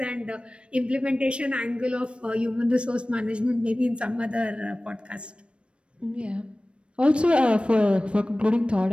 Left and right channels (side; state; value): left; late; 0.059 ms